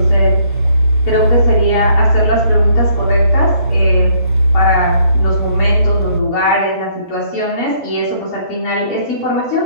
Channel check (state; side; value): inverted; both; correlation -0.65